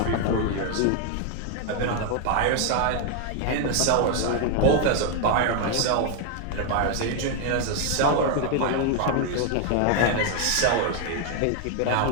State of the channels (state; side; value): different; both; correlation 0.00